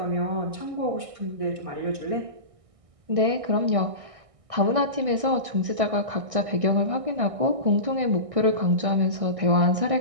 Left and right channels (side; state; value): left; late; 1.6 ms